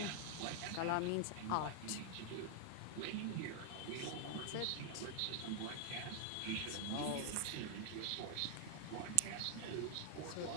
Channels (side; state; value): both; different; correlation 0.00